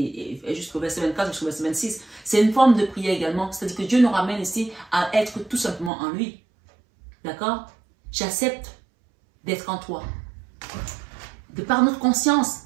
jusqu'au verset 24, jusqu'au verset 26. C'est une forme de prière également. C'est-à-dire que Dieu nous ramène ici à être tout simplement en lui. D'accord? J'accepte d'être en toi. De par notre conscience,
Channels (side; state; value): left; drops out; at 5.9 s